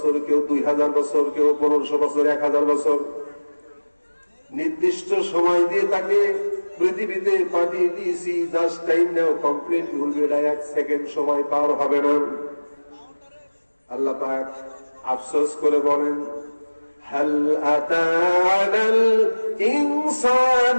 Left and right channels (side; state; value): both; inverted; correlation -1.00